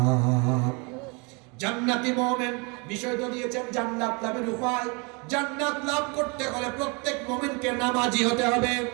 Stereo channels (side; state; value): left; quieter; 31.3 dB